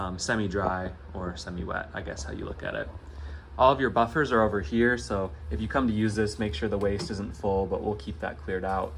semi-dry or semi-wet, I guess how you look at it. All of your buffers are over here, so if you come to use this, make sure the waste isn't full, but we'll keep that cleared out.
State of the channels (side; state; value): both; identical; correlation 1.00